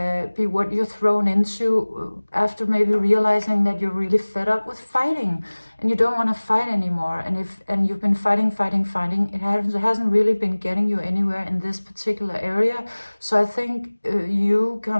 what you're thrown into after maybe realizing that you're really fed up with fighting and you don't want to fight anymore. And you've been fighting, it hasn't really been getting you anywhere in this particular area. So I think you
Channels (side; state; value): both; inverted; correlation -1.00